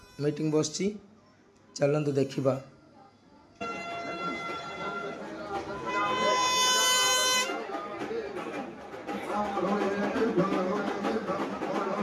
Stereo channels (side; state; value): both; identical; correlation 1.00